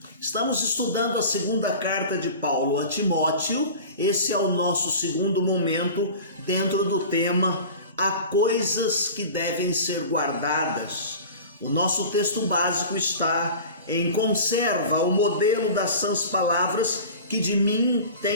Estamos estudando a segunda carta de Paulo a Timóteo. Esse é o nosso segundo momento dentro do tema Há coisas que devem ser guardadas. O nosso texto básico está em Conserva o modelo das sãs palavras que de mim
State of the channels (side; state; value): both; inverted; correlation -0.37